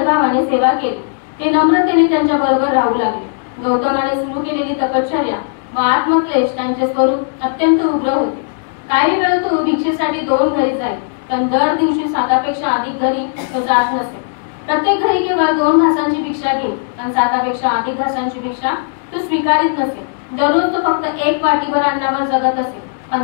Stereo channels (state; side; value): silent; right; digital silence